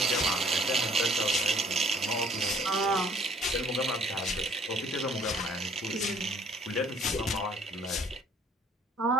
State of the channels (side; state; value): both; normal; correlation 0.59